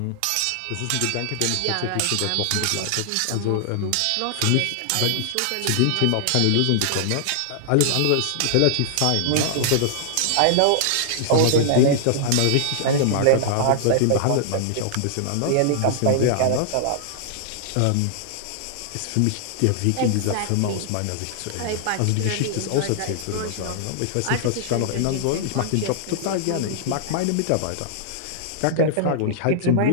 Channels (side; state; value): both; different; correlation -0.01